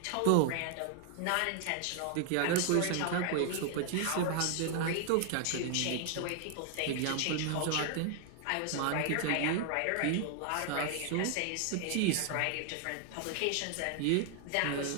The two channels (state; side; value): different; both; correlation 0.00